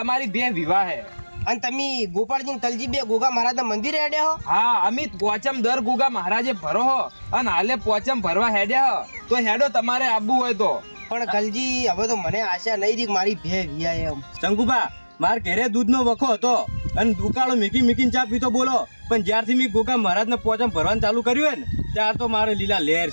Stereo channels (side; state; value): both; inverted; correlation -1.00